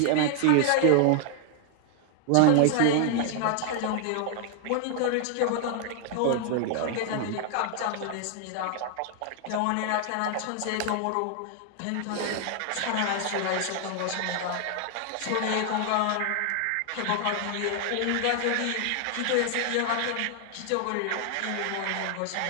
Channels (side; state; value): both; different; correlation 0.00